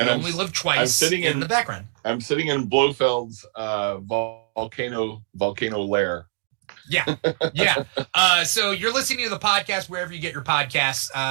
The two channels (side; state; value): left; silent; digital silence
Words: Only Live Twice in the background. I'm sitting in Blofeld's volcano lair. Yeah. So you're listening to the podcast wherever you get your